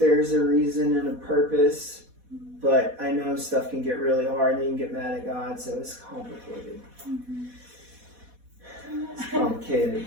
a reason and a purpose, but I know stuff can get really hard and you can get mad at God, so it's complicated. It's complicated,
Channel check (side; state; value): left; late; 4.1 ms